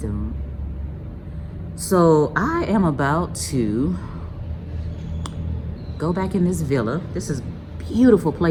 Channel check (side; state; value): both; identical; correlation 1.00